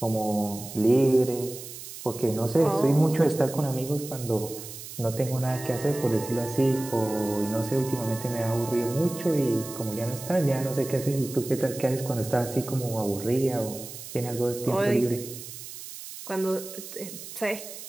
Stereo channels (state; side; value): noise; right; hiss, 12 dB below the sound